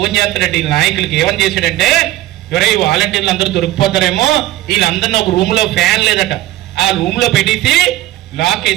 చేస్తాడంటే ఈ నాయకులకి. ఏమని చేశాడంటే, ఎవరై ఈ వాలంటీర్లు అందరూ దొరికిపోతారేమో, వీళ్ళందరినీ ఒక రూమ్ లో ఫ్యాన్ లేదట, ఆ రూమ్ లో పెట్టేసి లాక్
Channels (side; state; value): left; quieter; 15.4 dB